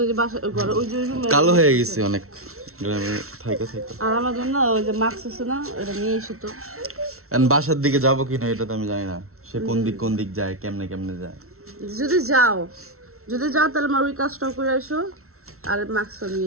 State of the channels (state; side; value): late; left; 0.63 ms